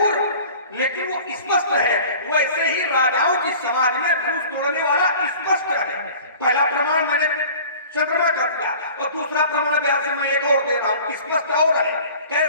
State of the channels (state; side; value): inverted; both; correlation -0.44